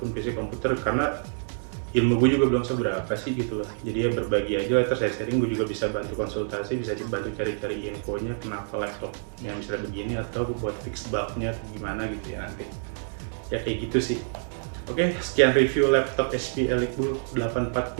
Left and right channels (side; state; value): left; silent; 57 dB below the other